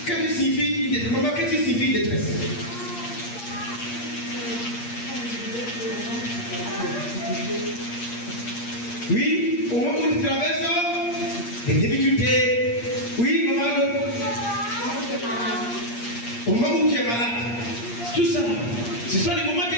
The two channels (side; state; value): right; late; 8.5 ms